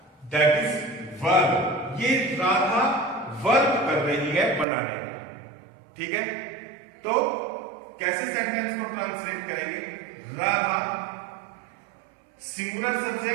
दैट इज वर्ब। ये राधा वर्ब कर रही है बनाने का, ठीक है। तो कैसे सेंटेंस को ट्रांसलेट करेंगे, Radha singular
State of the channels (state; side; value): drops out; left; at 4.7 s